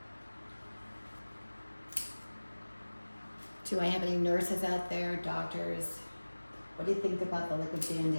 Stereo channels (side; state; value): both; inverted; correlation -1.00